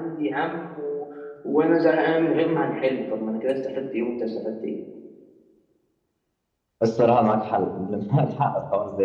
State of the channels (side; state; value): both; identical; correlation 1.00